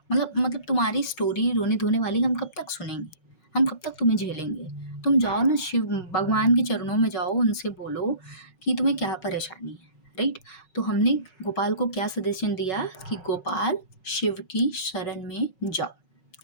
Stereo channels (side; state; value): right; late; 5.4 ms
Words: मतलब तुम्हारी स्टोरी रोने धोने वाली हम कब तक सुनेंगे, हम कब तक तुम्हें झेलेंगे, तुम जाओ ना शिव भगवान के चरणों में जाओ, उनसे बोलो कि तुम्हें क्या परेशानी है, राइट। तो हमने गोपाल को क्या सजेशन दिया कि गोपाल शिव की शरण में जाओ,